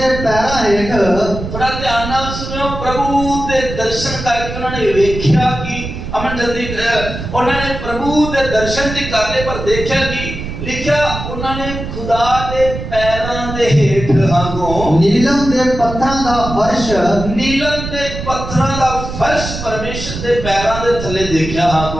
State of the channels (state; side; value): noise; right; rumble, 7 dB below the sound